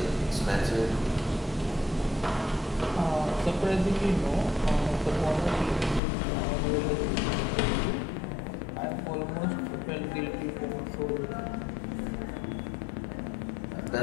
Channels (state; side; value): drops out; right; at 6.0 s